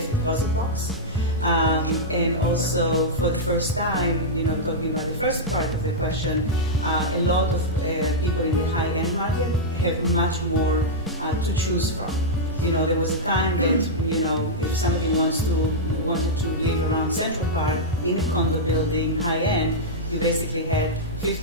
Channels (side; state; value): both; normal; correlation -0.08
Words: deposit box. And also, for the first time, you know, talking about the first part of the question, a lot of people in the high-end market have much more to choose from. You know, there was a time that, you know, if somebody wanted to live around Central Park in a condo building, high-end, you basically had